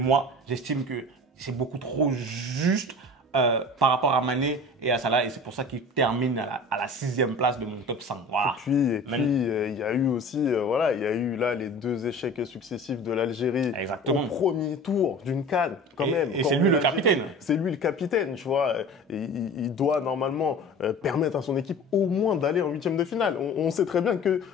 j'estime que c'est beaucoup trop juste par rapport à Mané et à Salah. Et c'est pour ça qu'il termine à la 6e place de mon top 5. Voilà. Et puis il y a eu aussi, il y a eu là les 2 échecs successifs de l'Algérie au premier tour d'une CAN, quand même. Et c'est lui le capitaine. C'est lui le capitaine, tu vois. Il doit normalement permettre à son équipe au moins d'aller en 8e de finale. On sait très bien que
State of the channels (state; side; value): normal; both; correlation 0.39